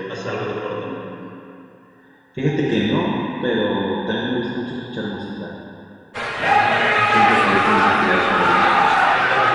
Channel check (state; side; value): identical; both; correlation 1.00